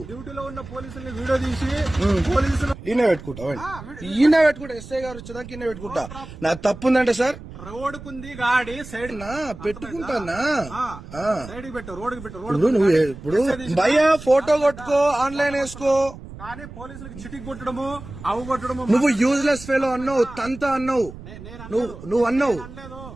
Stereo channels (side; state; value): right; noise; rumble, 14 dB below the sound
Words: ఈయన పెట్టుకుంటా, ఈయన పెట్టుకుంటా, ఎస్ఐ గారు వచ్చేదాకా ఈయన పెట్టుకుంటా. నాకు తప్పు ఉందంటే సార్ రోడ్డుకుంది గాడి సైడ్ నా పెట్టుకుంటానా, రోడ్డు నువ్వు ఇప్పుడు భయ్యా ఫోటో కొట్టుకో, ఆన్లైన్ వేసుకో, కానీ పోలీసులకు చిటికి కొట్టడము, అవు కొట్టడము. నువ్వు యూజ్లెస్ ఫెలో అన్నావు, తంతా అన్నావు, నువ్వు అన్నావు.